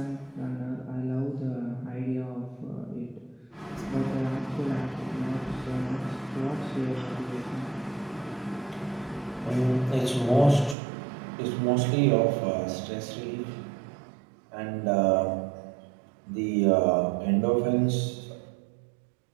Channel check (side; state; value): left; drops out; at 10.8 s